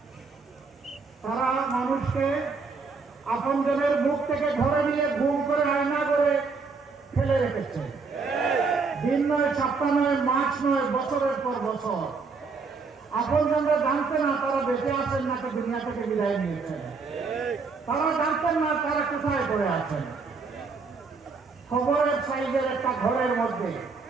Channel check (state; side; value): quieter; left; 4.6 dB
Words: তারা মানুষকে আপনজনের মুখ থেকে ধরে নিয়ে গুম করে আয়না করে ফেলে রেখেছে। দিন নয়, সপ্তাহ নয়, মাস নয়, বছরের পর বছর। আপনজনরা জানতেন না তারা বেঁচে আছেন নাকি দুনিয়া থেকে বিদায় নিয়েছেন। তারা জানতেন না তারা কোথায় পড়ে আছেন। খবরের সাইজের একটা ঘরের মধ্যে